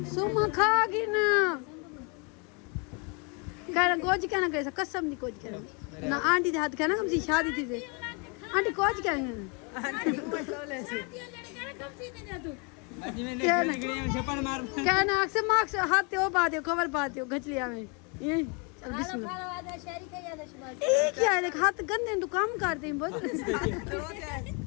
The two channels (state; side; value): quieter; right; 33.5 dB